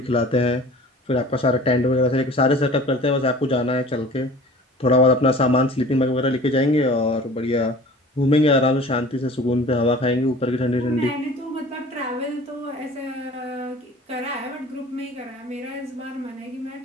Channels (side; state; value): both; normal; correlation 0.44